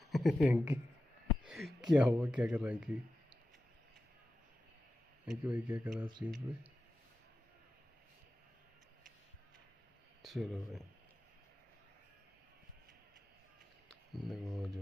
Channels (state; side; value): normal; both; correlation 0.92